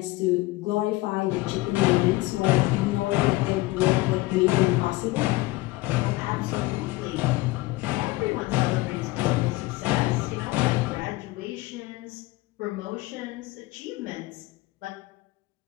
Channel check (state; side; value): quieter; right; 20.3 dB